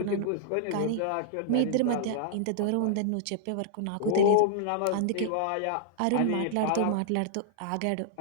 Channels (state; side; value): different; both; correlation -0.01